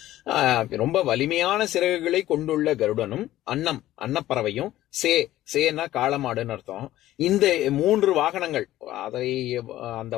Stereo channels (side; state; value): right; quieter; 14.5 dB